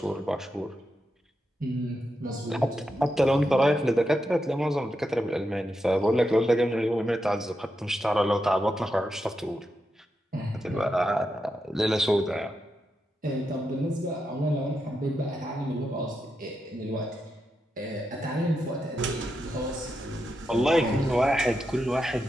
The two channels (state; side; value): normal; both; correlation 0.86